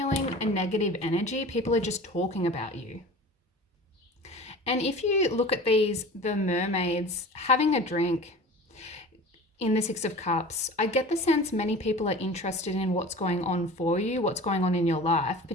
a negative energy. People are just talking about you. And if you look at these, the mermaids having a drink, in the Six of Cups, I get the sense many people are interested in what's going on for you, what's going on in your life,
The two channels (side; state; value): both; normal; correlation 0.38